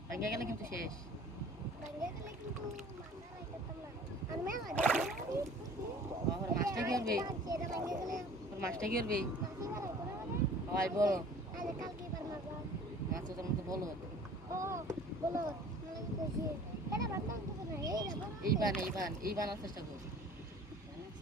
ভাঙ্গা গেলে কিন্তু শেষ মাছটা কি করবে মাছটা কি করবে হয় বলো মাছ তোর মতো বলো এই বানার চেষ্টা কর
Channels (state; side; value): normal; both; correlation 0.48